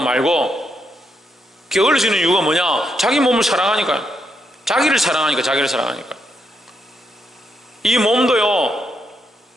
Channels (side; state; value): both; normal; correlation 0.80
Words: 말고. 게을러지는 이유가 뭐냐? 자기 몸을 사랑하니까요. 자기를 사랑하니까. 이 몸도요,